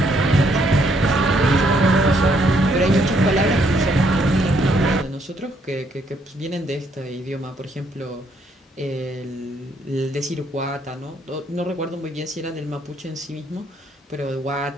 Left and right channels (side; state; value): both; normal; correlation 0.70